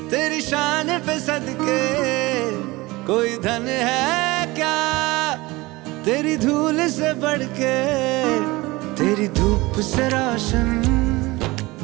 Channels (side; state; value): left; quieter; 21.5 dB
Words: तेरी शान पे सदके, कोई धन है क्या तेरी धूल से बढ़ के। तेरी धूप से रोशन,